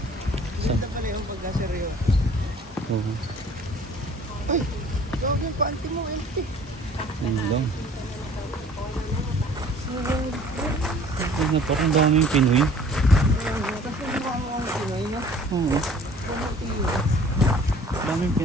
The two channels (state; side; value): normal; both; correlation 0.52